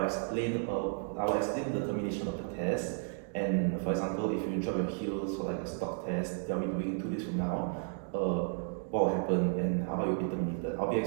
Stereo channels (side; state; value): left; silent; 56 dB below the other